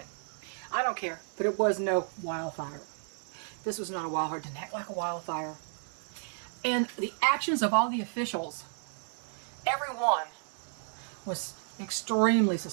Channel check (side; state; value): left; silent; 56 dB below the other